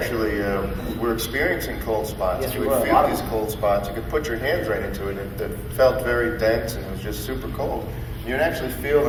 were experiencing cold spots. Yes, you we would were. feel these cold spots. You could put your hands right into it, and it felt very dense, and it was just super cold. You would actually feel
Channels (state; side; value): identical; both; correlation 1.00